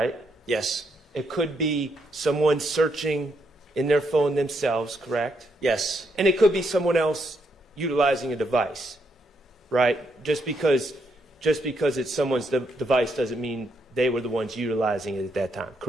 Yes. It could be someone searching in their phone themselves, correct? Yes. And it could be someone else utilizing a device, right? Just because it's someone's device doesn't mean they were the ones utilizing it at that time,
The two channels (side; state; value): both; normal; correlation 0.77